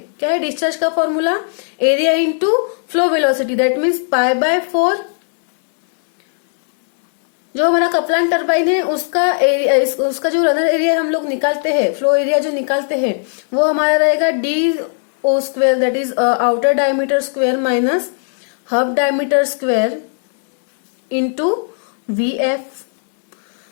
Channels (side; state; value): right; silent; digital silence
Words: क्या है, डिस्चार्ज का formula area into flow velocity, that means π/4। जो हमारा कपलान टरबाइन है उसका एरिया, उसका जो रनर एरिया हम लोग निकालते हैं, फ्लो एरिया जो निकालते हैं, वो हमारा रहेगा DO², that is outer diameter square minus hub diameter square into VF.